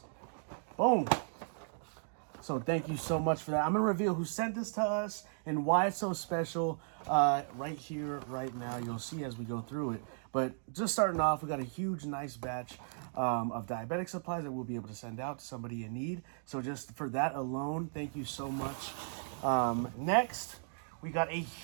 Boom. So thank you so much for that. I'm going to reveal who sent this to us and why it's so special right here, right now. You'll see as we go through it. But just starting off, we got a huge, nice batch of diabetic supplies that we'll be able to send out to somebody in need. So just for that alone, thank you so much. Next, we got a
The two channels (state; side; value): silent; left; digital silence